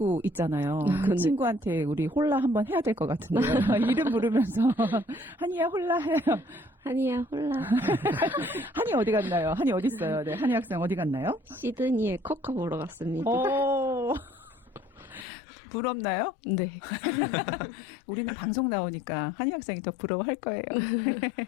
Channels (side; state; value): right; drops out; at 15.2 s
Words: 있잖아요. 그 네. 친구한테 우리 홀라 한번 해야 될 것 같은데요. 이름 부르면서 한이야 홀라 해요. 한이야 홀라. 한이 어디 갔나요? 한이 어디 있어요? 네, 한이 학생 어디 갔나요? 시드니에 커커 보러 갔습니다. 오, 부럽나요? 네. 우리는 방송 나오니까 한이 학생이 더 부러워할 거예요.